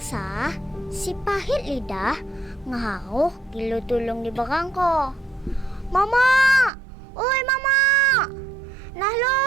si pahit lidah ngahauh kilu tulung di berangko. Mama, oi mama, nah lo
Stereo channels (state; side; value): drops out; left; at 6.7 s